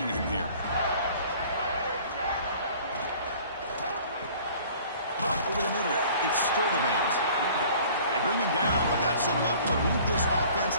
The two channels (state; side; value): inverted; both; correlation -0.50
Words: him here. Over the middle, it's Sturdivant. They bring him down, but that's enough to move this offense